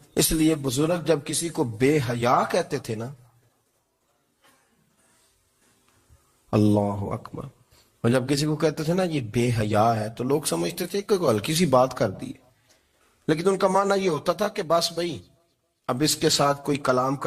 اس لیے بزرگ جب کسی کو بے حیا کہتے تھے نا، اللہ اکبر، اور جب کسی کو کہتے تھے نا یہ بے حیا ہے تو لوگ سمجھتے تھے کہ ہلکی سی بات کر دی ہے، لیکن ان کا معنی یہ ہوتا تھا کہ بس بھائی اب اس کے ساتھ کوئی کلام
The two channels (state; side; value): identical; both; correlation 1.00